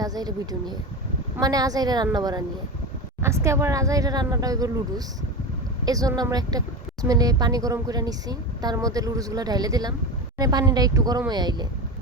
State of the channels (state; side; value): normal; both; correlation 0.23